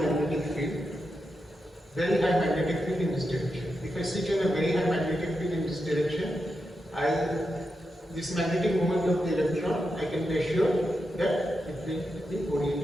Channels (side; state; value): both; normal; correlation 0.87